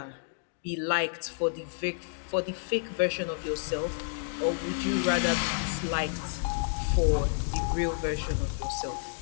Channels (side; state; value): right; silent; digital silence